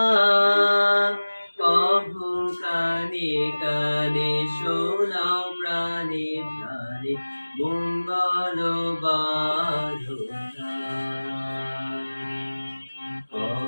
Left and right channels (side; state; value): both; inverted; correlation -1.00